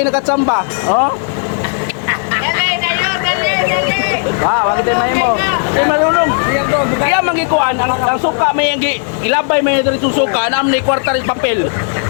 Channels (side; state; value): right; silent; 56 dB below the other